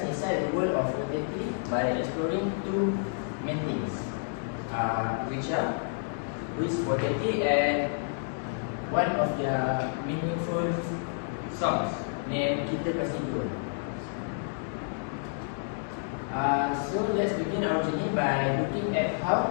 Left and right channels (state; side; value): silent; right; digital silence